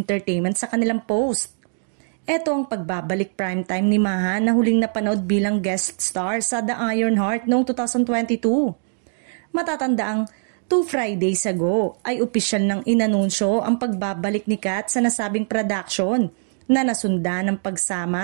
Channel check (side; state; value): left; silent; digital silence